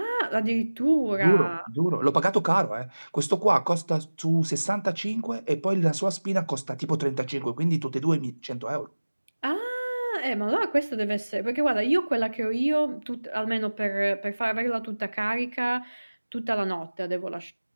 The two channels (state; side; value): inverted; both; correlation -1.00